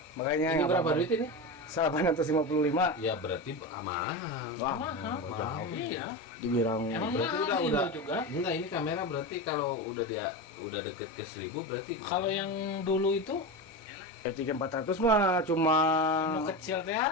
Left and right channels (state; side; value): normal; both; correlation 0.21